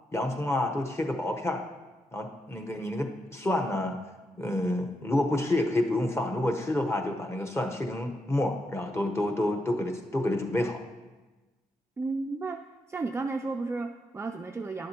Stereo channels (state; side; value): normal; both; correlation 0.83